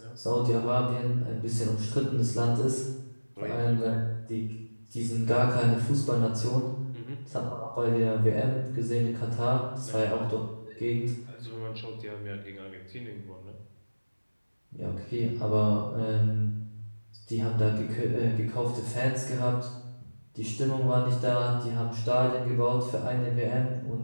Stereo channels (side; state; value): both; inverted; correlation -1.00